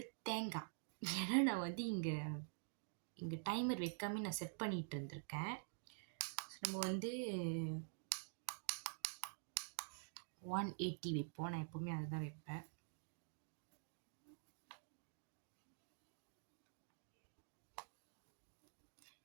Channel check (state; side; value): silent; left; digital silence